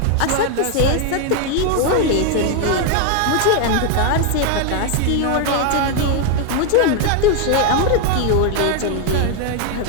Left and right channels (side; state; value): both; different; correlation 0.01